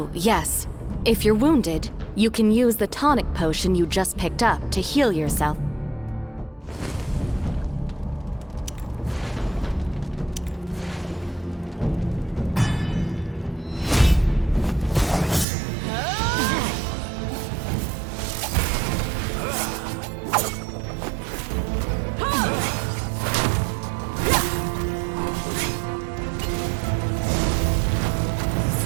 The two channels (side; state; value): left; drops out; at 15.5 s